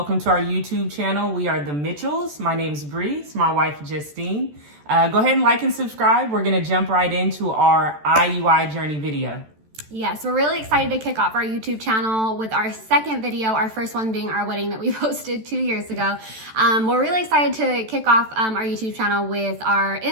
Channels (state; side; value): late; left; 14 ms